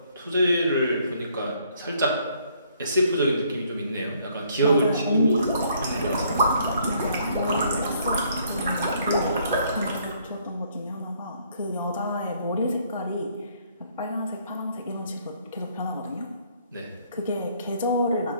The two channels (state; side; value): inverted; both; correlation -0.66